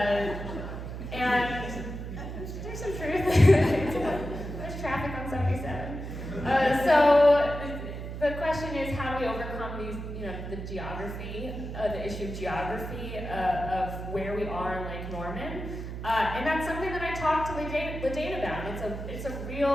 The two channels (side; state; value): right; noise; hum, 7 dB below the sound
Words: And there's some truth. There's traffic on 77. So the question is, how do we overcome these, you know, the geography, the issue of geography of where we are in Lake Norman? And that's something that I talked to LaDane about. It's a